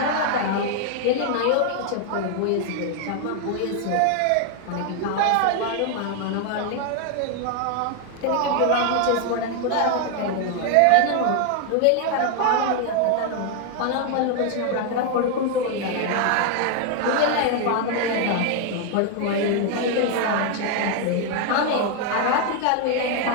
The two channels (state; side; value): different; both; correlation 0.00